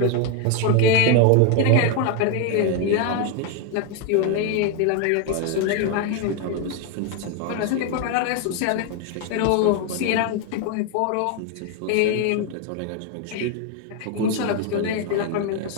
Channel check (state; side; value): different; both; correlation 0.01